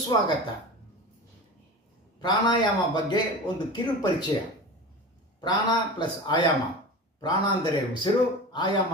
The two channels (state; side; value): normal; both; correlation 0.31